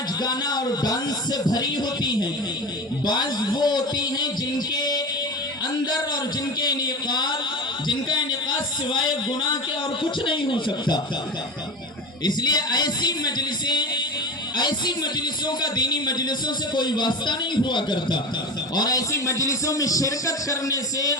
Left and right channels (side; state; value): both; normal; correlation 0.28